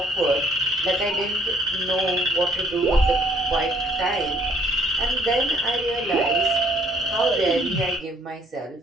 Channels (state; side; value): normal; both; correlation 0.62